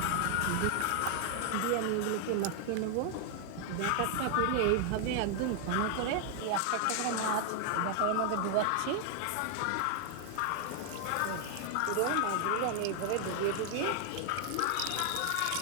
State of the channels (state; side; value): different; both; correlation 0.00